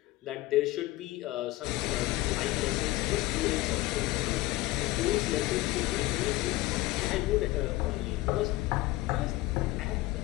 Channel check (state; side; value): quieter; right; 18.5 dB